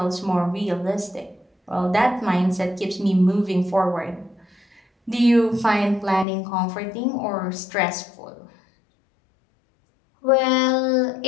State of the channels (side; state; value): right; drops out; at 6.2 s